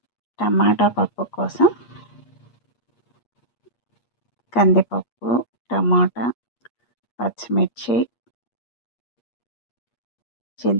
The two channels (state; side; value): late; right; 8.5 ms